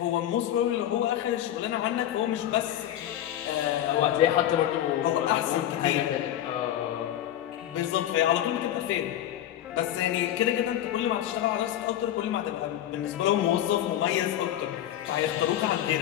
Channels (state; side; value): quieter; right; 11.9 dB